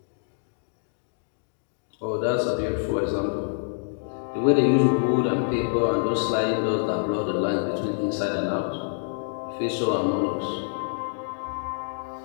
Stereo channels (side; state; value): right; silent; digital silence